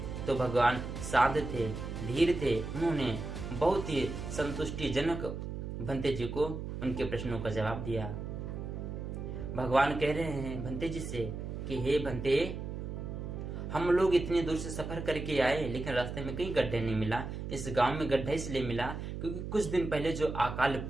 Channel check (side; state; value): right; noise; hum, 6 dB below the sound